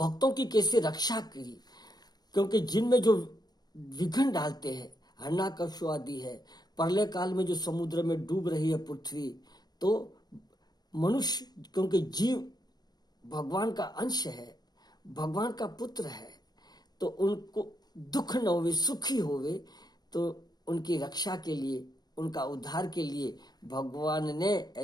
की कैसे रक्षा की। क्योंकि जिनमें जो विघ्न डालते हैं, हिरण्यकश्यप आदि है, प्रलय काल में जो समुद्र में डूब रही है पृथ्वी, तो मनुष्य, क्योंकि जीव भगवान का अंश है, भगवान का पुत्र है, तो उनको दुख न होवे, सुखी होवे। तो उनकी रक्षा के लिए, उनका उद्धार के लिए भगवान ने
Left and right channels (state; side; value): late; right; 0.19 ms